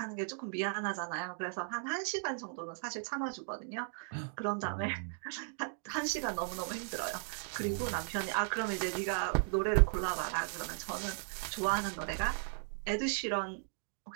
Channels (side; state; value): left; silent; 53 dB below the other